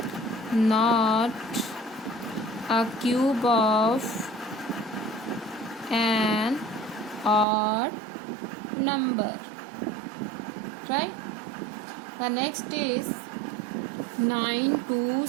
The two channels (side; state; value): left; drops out; at 7.5 s